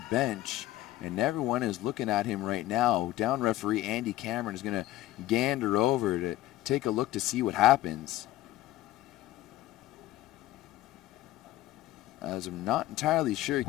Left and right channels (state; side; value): quieter; right; 15.4 dB